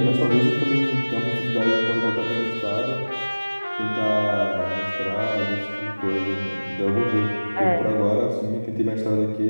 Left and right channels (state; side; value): inverted; both; correlation -1.00